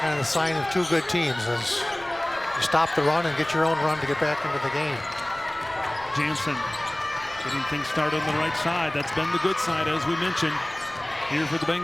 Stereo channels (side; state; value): left; noise; rumble, 23 dB below the sound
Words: of the sign of two good teams, is you stop the run and get your own run to get back into the game. Jansen getting things started on the right side. That's been the good side, as we mentioned, here for the